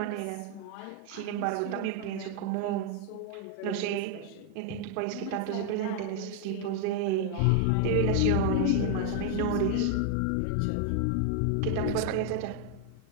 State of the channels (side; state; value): both; different; correlation 0.00